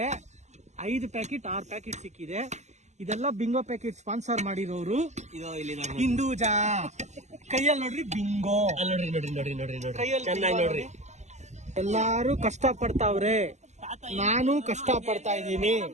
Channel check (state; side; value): late; left; 0.33 ms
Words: 5 ಪ್ಯಾಕೆಟ್ 6 ಪ್ಯಾಕೆಟ್ ಸಿಕ್ಕಿದೆ. ಇದೆಲ್ಲ ಬಿಂಗೋ ಪ್ಯಾಕೆಟ್ ಸ್ಪಾನ್ಸರ್ ಮಾಡಿರೋರು ಹಿಂದೂಜಾ. ಕೈಯಲ್ಲಿ ನೋಡ್ರಿ ಬಿಂಗೋ, ಕೈಯಲ್ಲಿ ಎಲ್ಲಾರು ಕಷ್ಟ ಪಡ್ತಾವ್ರೆ, ನಾನು ಕಷ್ಟ ಪಡ್ತಾ ಇದ್ದೀನಿ.